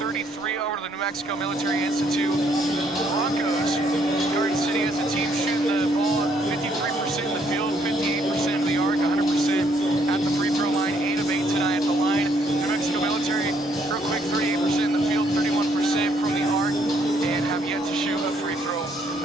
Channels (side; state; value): both; normal; correlation 0.69